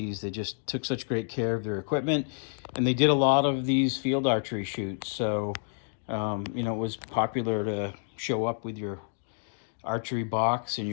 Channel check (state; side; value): silent; right; 59 dB below the other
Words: they just took such great care of their equipment, and they did a lot of these field archery shoots. So, you know, it was popular to show up with your archery box and